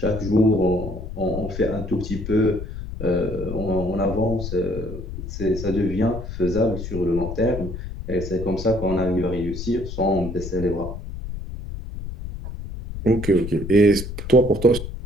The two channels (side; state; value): left; noise; rumble, 8 dB below the sound